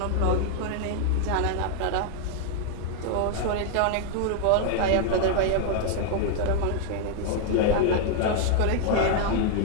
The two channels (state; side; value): different; both; correlation 0.00